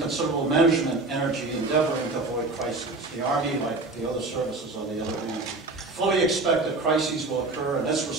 management energy endeavoring to avoid crises. The Army, like the other services on the other hand, fully expect that crises will occur, and its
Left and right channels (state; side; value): quieter; left; 3.3 dB